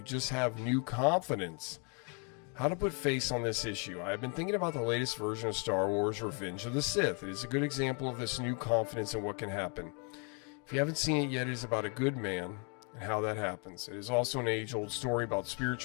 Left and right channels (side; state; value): right; quieter; 34.0 dB